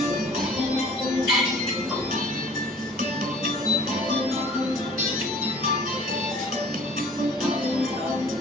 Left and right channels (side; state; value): both; normal; correlation 0.50